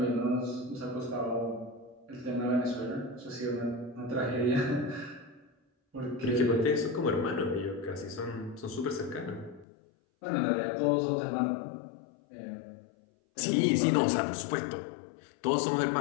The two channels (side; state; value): right; drops out; at 9.7 s